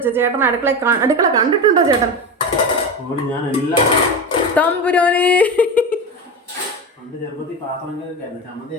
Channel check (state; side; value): normal; both; correlation 0.22